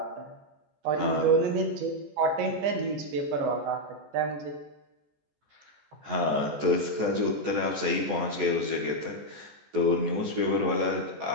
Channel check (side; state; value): left; late; 14 ms